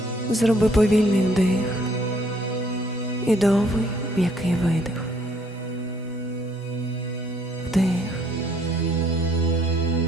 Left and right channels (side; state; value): both; normal; correlation 0.64